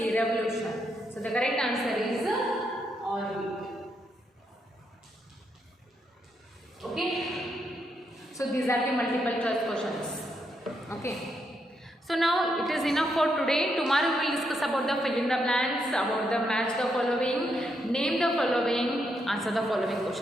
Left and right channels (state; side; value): normal; both; correlation 0.79